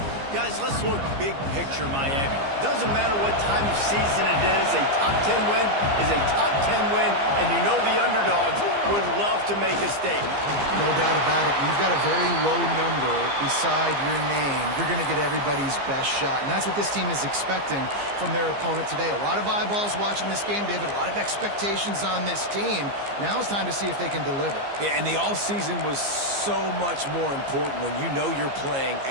Guys, let's look big picture Miami. Doesn't matter what time of season it is, a top 10 win is a top 10 win, and you know the underdogs would love to make a statement. No doubt about it. You've got a very low number beside your name. You're going to get everybody's best shot, and that's what this team is expecting from their opponent today. A lot of eyeballs watching this game, David. A lot of expectations on this team. Now it's time to see if they can deliver. Yeah, and the offseason was so much more important when you know you're playing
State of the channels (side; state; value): left; late; 15 ms